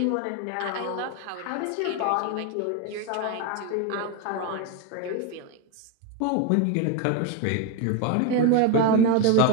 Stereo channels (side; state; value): both; different; correlation 0.01